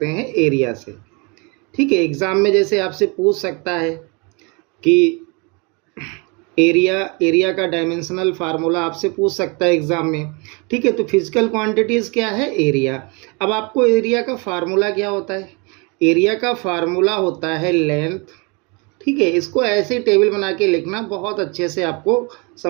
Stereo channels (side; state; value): left; quieter; 30.5 dB